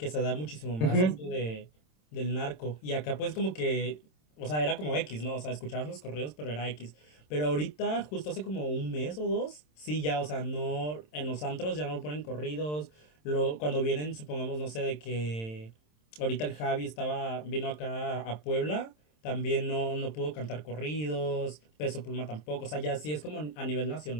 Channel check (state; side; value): late; right; 27 ms